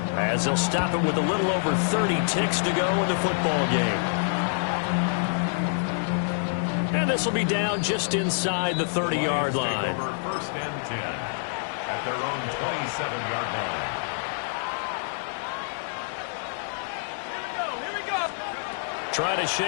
as they'll stop it with a little over 30 ticks to go in the football game. And this will be down just inside the 30-yard line. 1st and 10 at their own 27-yard line. Trying to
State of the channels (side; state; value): right; silent; digital silence